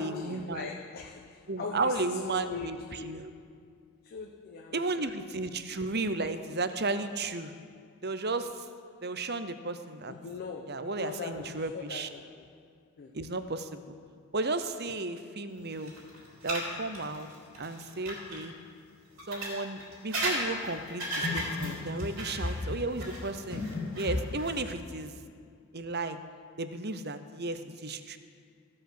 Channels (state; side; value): normal; both; correlation 0.01